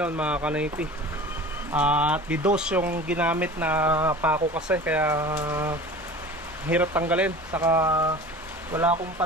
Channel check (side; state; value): both; normal; correlation 0.39